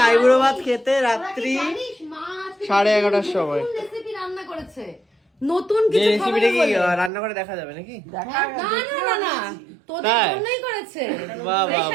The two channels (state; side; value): drops out; left; at 7.1 s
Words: আইবুড়ো ভাত খেতে রাত্রি 11:30টার সময়। রান্না করেছে নতুন কিছু রেসিপিটা কি রান্না করে দেখা যাবে নাকি? না তোদের জন্যই করেছে। বাহ বাহ